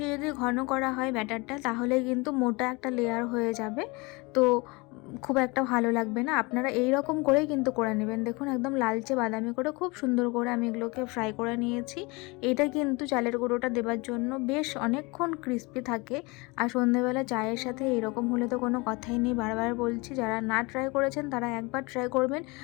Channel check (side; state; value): right; quieter; 26.2 dB